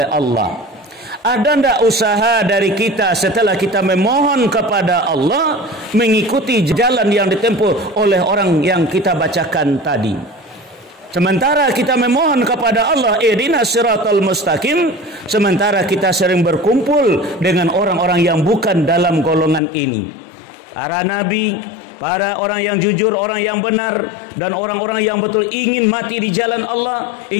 Allah, ada ndak usaha dari kita setelah kita memohon kepada Allah mengikuti jalan yang ditempuh oleh orang yang kita bacakan tadi? Sementara kita memohon kepada Allah, ihdinas siratal mustaqim, sementara kita sering berkumpul dengan orang-orang yang bukan dalam golongan ini. Para nabi, para orang yang jujur, orang yang benar, dan orang-orang yang betul ingin mati di jalan Allah,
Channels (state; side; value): drops out; right; at 19.6 s